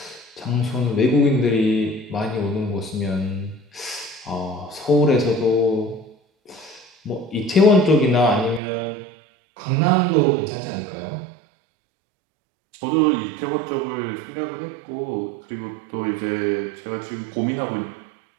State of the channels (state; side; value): drops out; left; at 8.6 s